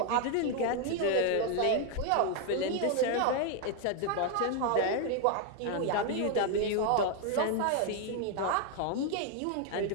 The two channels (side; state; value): both; different; correlation 0.01